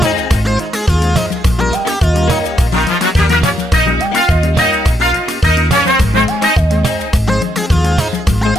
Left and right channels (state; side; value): normal; both; correlation 0.79